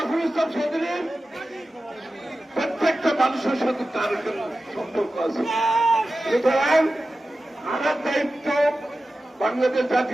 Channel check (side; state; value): both; normal; correlation 0.94